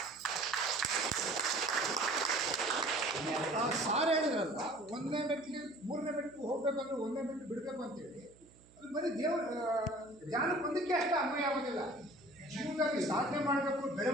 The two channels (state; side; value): noise; right; hum, 26 dB below the sound